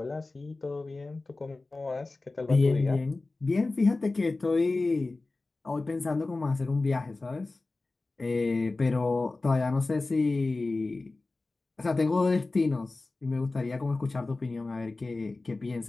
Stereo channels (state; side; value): quieter; right; 3.3 dB